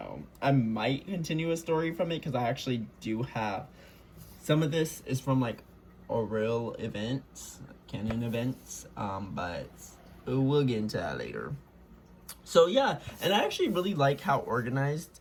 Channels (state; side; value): identical; both; correlation 1.00